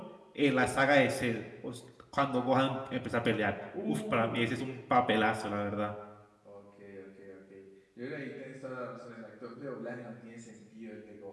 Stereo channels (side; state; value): both; identical; correlation 1.00